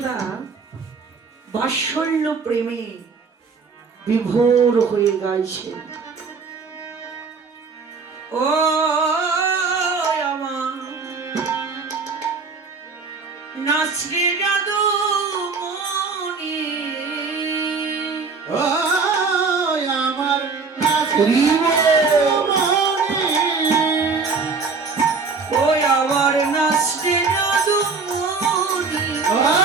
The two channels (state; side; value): quieter; left; 4.7 dB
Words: বাৎসল্য প্রেমে বিভোর হয়ে গাইছেন, ও আমার নাচরে জাদু মনি, ও আমার নাচরি ওই আমার নাচরে জাদু মনি,